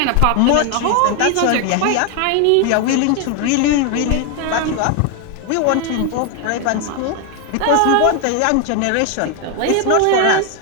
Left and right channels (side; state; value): both; different; correlation 0.01